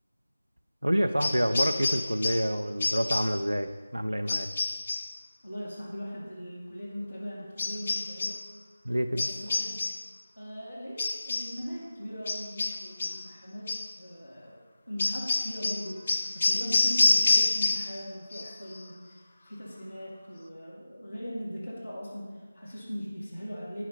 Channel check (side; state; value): both; inverted; correlation -0.96